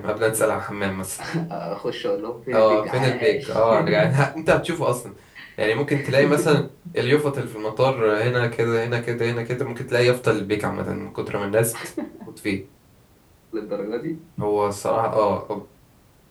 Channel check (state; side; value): identical; both; correlation 1.00